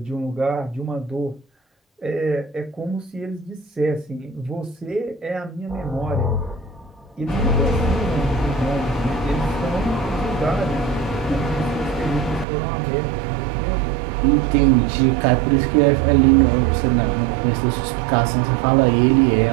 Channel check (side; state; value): left; drops out; at 12.5 s